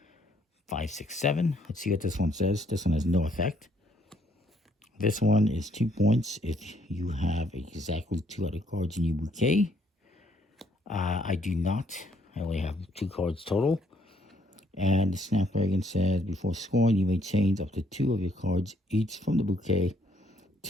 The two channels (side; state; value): both; normal; correlation 0.68